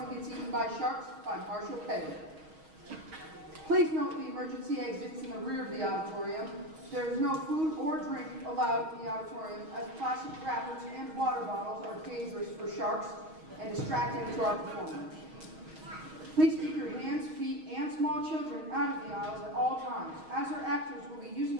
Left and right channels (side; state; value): left; late; 6.3 ms